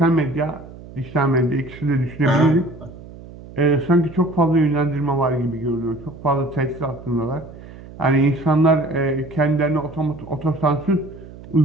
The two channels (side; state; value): right; noise; hum, 17 dB below the sound